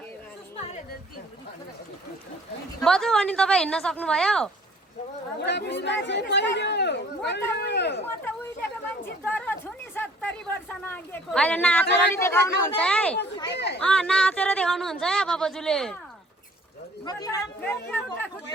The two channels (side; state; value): both; normal; correlation 0.56